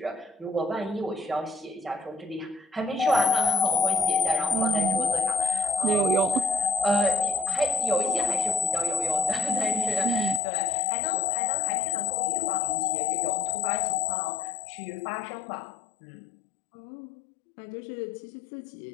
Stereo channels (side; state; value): right; drops out; at 10.4 s